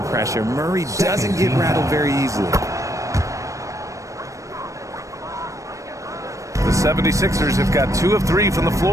pressure. Murray doesn't get rattled very easily. The 76ers have got 2 of 3 from the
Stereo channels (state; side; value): late; left; 0.15 ms